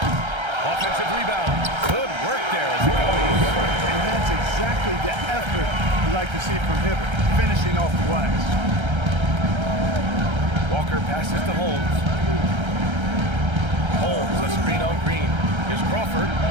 Offensive rebound. Good work there as it goes. And that's exactly the effort you like to see from Hibbert, finishing off the glass. Walker passes to Holmes. Holmes, a screen on Green. Here's Crawford.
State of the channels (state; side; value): late; left; 1.3 ms